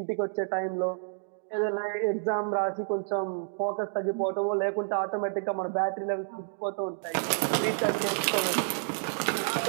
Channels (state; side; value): silent; left; digital silence